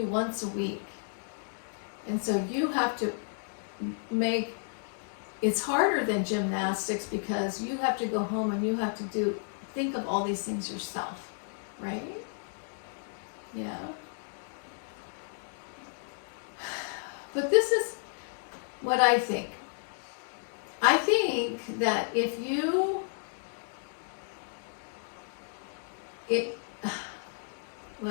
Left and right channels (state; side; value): silent; right; digital silence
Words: once a week. And so you have to make, it's harder than gymnastics because you have to go home and you have to think of all these things yourself, right? Yeah. But this is what I think. I think that if you,